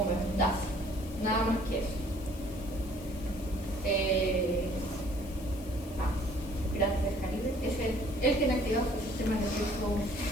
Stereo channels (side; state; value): left; noise; hiss, 19 dB below the sound